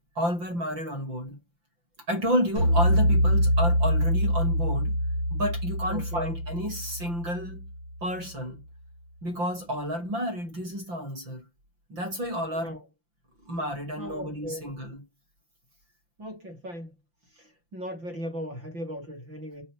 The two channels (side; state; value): left; late; 5.8 ms